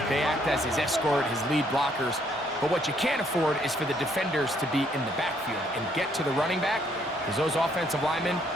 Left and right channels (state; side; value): normal; both; correlation 0.68